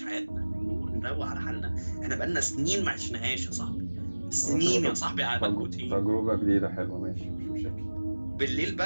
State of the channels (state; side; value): inverted; both; correlation -1.00